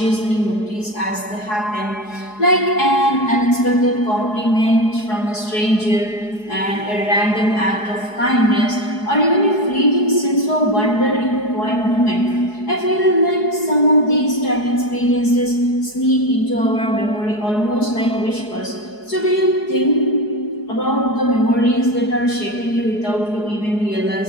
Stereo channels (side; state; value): right; late; 4.8 ms